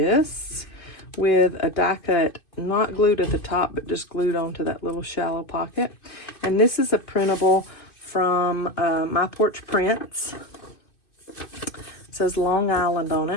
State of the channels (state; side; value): late; right; 2.6 ms